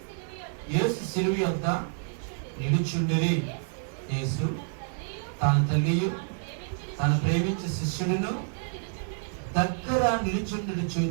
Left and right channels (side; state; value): left; silent; digital silence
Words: యేసు శిలువ యొద్ద నిలుచుండిరి. యేసు తన తల్లియు తను ప్రేమించే శిష్యుడును దగ్గర నిలుచుండి